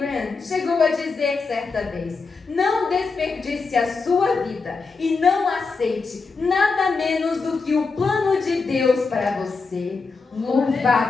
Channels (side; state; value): right; quieter; 4.4 dB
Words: chegou a dizer certa vez, não desperdice a sua vida e não aceite nada menos do que o plano de Deus para você.